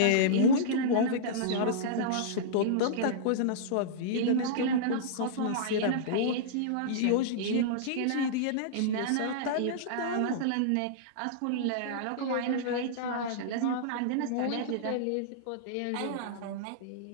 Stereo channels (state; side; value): different; both; correlation -0.03